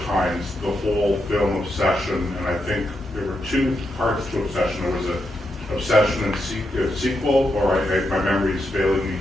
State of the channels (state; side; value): normal; both; correlation 0.84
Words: times the whole film Obsession, and I think there were two parts to Obsession. There was an Obsession and sequel, or my memory is failing me